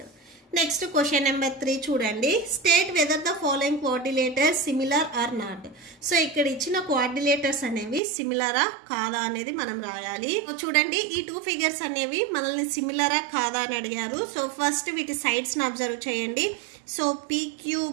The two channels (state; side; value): drops out; left; at 8.0 s